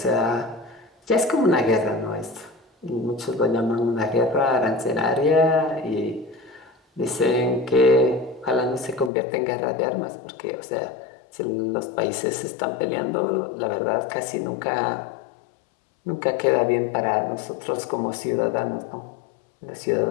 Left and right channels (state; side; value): drops out; right; at 9.1 s